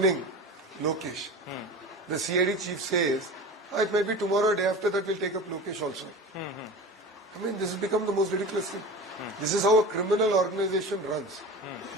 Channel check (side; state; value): both; normal; correlation 0.33